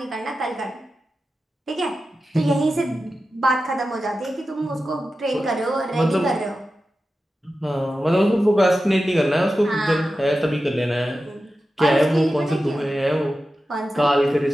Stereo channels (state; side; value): normal; both; correlation 0.92